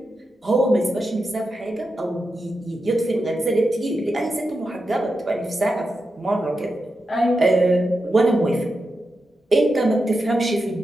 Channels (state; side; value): normal; both; correlation 0.88